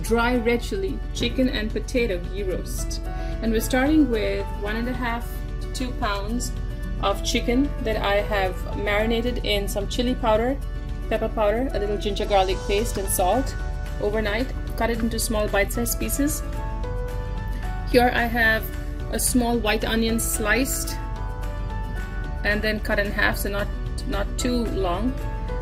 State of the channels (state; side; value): identical; both; correlation 1.00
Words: red chili chicken and potato ghee roast. And we're starting with 1.5 to 2 pounds of chicken that I have marinated in some chili powder, pepper powder, a little ginger garlic paste and salt overnight. Cut it into small bite-sized pieces. Here I have a small white onion sliced and then cut in half, so not too long.